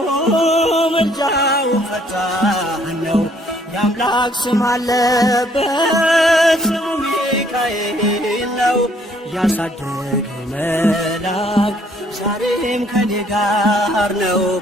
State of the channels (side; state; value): both; normal; correlation 0.64